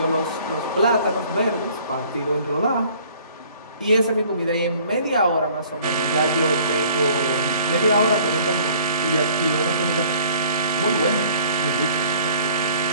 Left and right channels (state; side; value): inverted; both; correlation -0.54